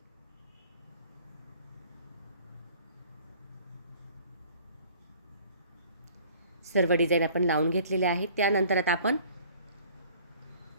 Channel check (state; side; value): inverted; both; correlation -0.52